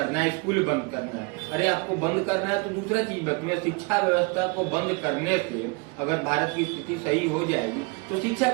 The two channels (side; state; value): left; quieter; 29.7 dB